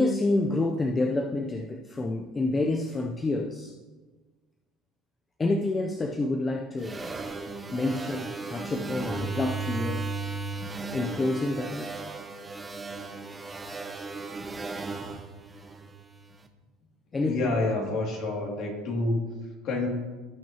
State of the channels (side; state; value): both; normal; correlation 0.75